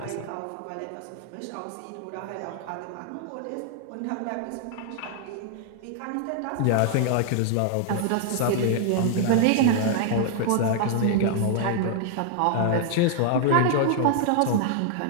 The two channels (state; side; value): different; both; correlation -0.01